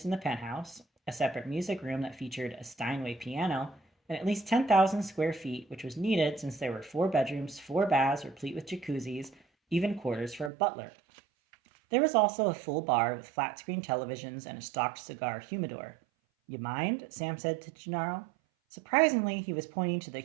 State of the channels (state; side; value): drops out; left; at 10.5 s